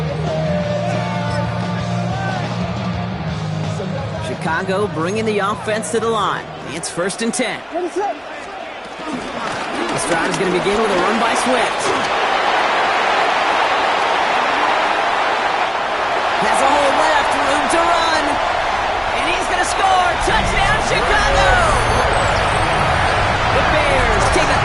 Chicago bringing the offense to the line. It's 1st and 10. What is up? This drive is going to begin with a run by Swift. Has a hole left, room to run. And he's going to score. Touchdown, Chicago! The Bears take a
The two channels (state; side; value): identical; both; correlation 1.00